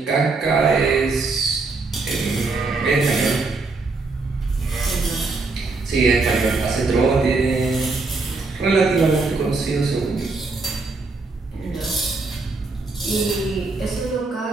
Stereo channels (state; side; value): quieter; left; 3.8 dB